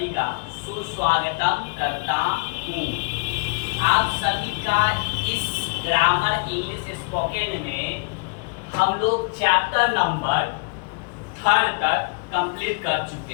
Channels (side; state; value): right; quieter; 31.4 dB